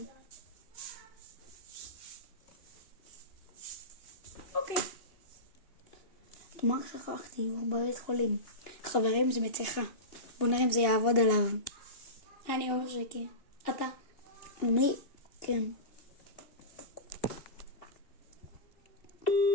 אוקיי. תאמר שכחתי, הוא בבית חולים. חברים, זה מתיחה. בוא נראה אם זה יעבוד עליו. אני אומר שכן. אתה? מי? כן.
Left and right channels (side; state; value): right; late; 2.8 ms